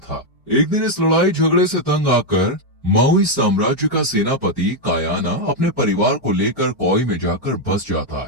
एक दिन इस लड़ाई झगड़े से तंग आकर माउई साम्राज्य का सेनापति कायाना अपने परिवार को लेकर कोई में जाकर बस जाता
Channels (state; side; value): normal; both; correlation 0.01